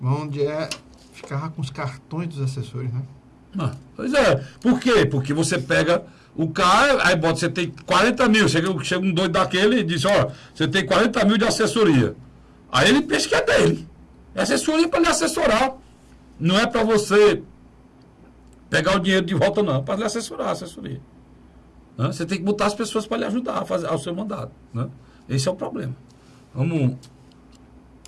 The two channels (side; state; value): both; identical; correlation 1.00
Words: Onde ficava com os cartões dos assessores, né? Pois é. Por quê? Porque você pega o cara, aí bota, você tem 40 mil, chega um doido daquele e diz, ó, você tem 40 mil de assessoria. Aí ele pensa que é dele. É assessoria para lhe assessorar. Não é para você pegar o dinheiro de volta, não. É para lhe assessorar a assessoria. Né? Você tem que botar as pessoas para lhe ajudar a fazer o seu mandato. Né? Esse é o problema.